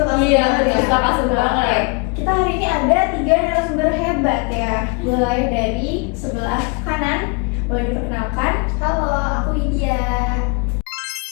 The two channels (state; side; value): quieter; right; 31.6 dB